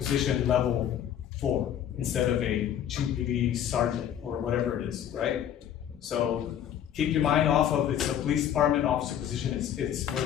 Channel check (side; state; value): right; quieter; 10.1 dB